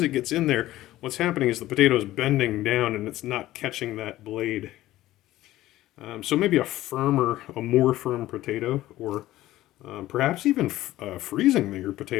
it gets in there, what's happening is the potato is bending down and it's not catching that blade. So maybe a more firm potato, or perhaps even freezing your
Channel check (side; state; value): right; quieter; 15.4 dB